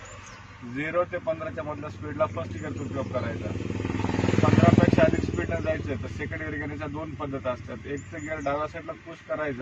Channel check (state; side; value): identical; both; correlation 1.00